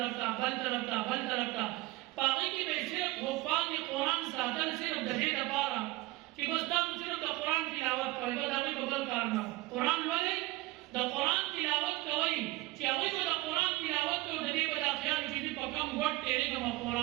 ته، بل طرف ته، بل طرف ته. په هغې کې به یې صرف حفاظ قرآن ساتل صرف د دې لپاره چې بس تاسو صرف د قرآن تلاوت کوئ، بس د هغوی به بل کار نه. قرآن لولئ، د قرآن تلاوت کوئ چې هغوی به د قرآن تلاوت کوي، د دې به دا خیال چې زه په کوم ګټ تېرېږم او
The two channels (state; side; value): quieter; left; 19.7 dB